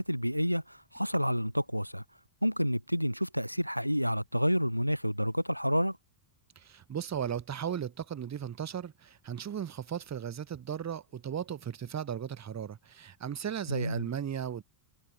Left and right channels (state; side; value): inverted; both; correlation -0.79